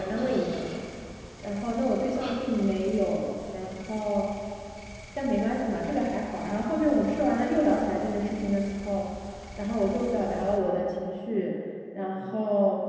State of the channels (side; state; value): both; identical; correlation 1.00